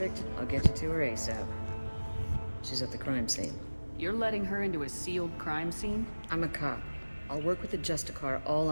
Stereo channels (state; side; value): inverted; both; correlation -1.00